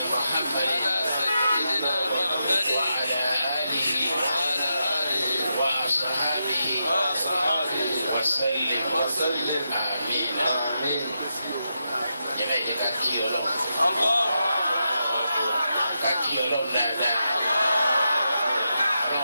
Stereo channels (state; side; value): inverted; both; correlation -0.85